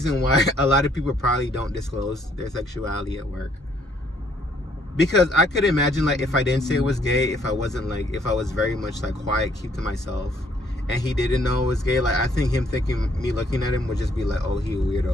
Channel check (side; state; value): both; normal; correlation 0.66